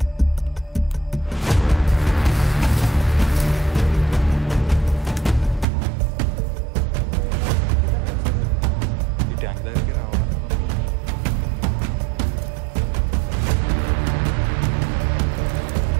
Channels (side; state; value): left; drops out; at 5.7 s